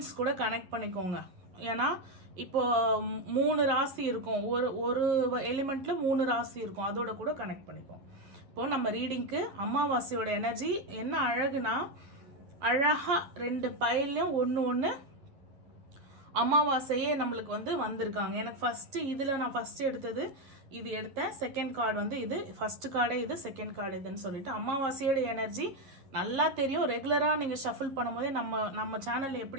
கூட கனெக்ட் பண்ணிக்கோங்க. ஏன்னா இப்போ 3 ராசி இருக்கும், ஒரு எலிமெண்ட்ல 3 ராசி இருக்கும், அதோட கூட கனெக்ட் பண்ணிக்கோங்க. இப்போ நம்ம ரீடிங்க்கு அமாவாசையோட எனர்ஜி என்ன அழகுனா, அழகா 2 பைல்லையும் ஒன்று அமாவாசையே நம்மளுக்கு வந்து வந்திருக்காங்க. எனக்கு ஃபர்ஸ்ட் இதில் நான் ஃபர்ஸ்ட் எடுத்தது இது எடுத்தேன். செகண்ட் கார்டு வந்து இது, ஃபர்ஸ்ட் கார்டே இது, செகண்ட் கார்டு இதுன்னு சொல்லிட்டு அமாவாசையோட எனர்ஜி நல்லா தெரியும். ரெகுலராக நீங்கள் ஷஃபிள் பண்ணும்போதே நம்ம சேனலில்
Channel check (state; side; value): late; left; 11 ms